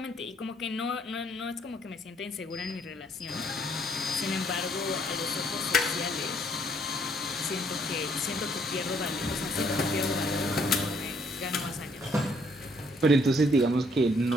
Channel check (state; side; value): normal; both; correlation 0.66